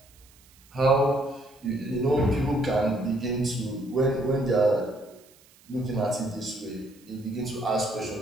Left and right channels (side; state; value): right; noise; hiss, 28 dB below the sound